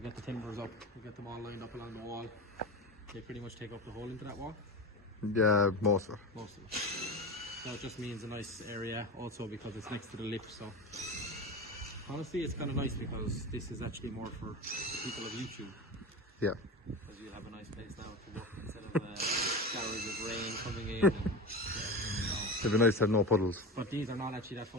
get the timbers up, you get them all lined up along the wall. They pretty much take up the whole into that wall. Yeah, most of it. Most of it. So it just means a nice area also because it's next to the lift. So honestly, it's kind of nice because this is actually more for people of YouTube. Yeah. Because you have a nice place now to work instead of showers of rain coming in. And, It'd be nice to have no puddles. but these are not actually that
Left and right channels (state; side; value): normal; both; correlation 0.25